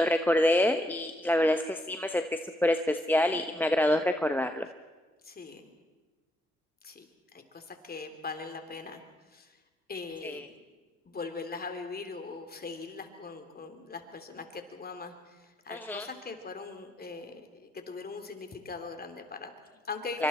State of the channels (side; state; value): both; normal; correlation 0.76